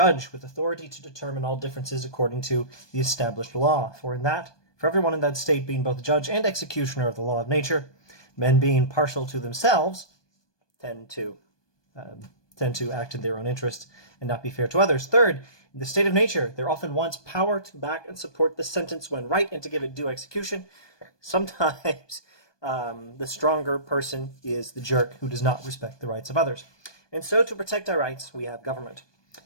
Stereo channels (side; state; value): right; late; 1.2 ms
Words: with authority to determine all differences according to the established law. For everyone in that state being both judge and executioner of the law of nature, men being partial to themselves tend to act in their own interest and not be fair to others. Third, in the state of nature, there often wants power to back and support the sentence when right and to give it due execution. Sometimes the stronger person is the jerk who does not respect the rights of others. And so to protect our rights, we have government.